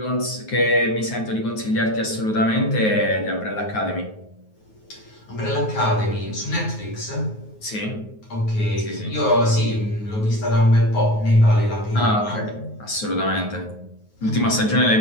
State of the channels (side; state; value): right; late; 9.4 ms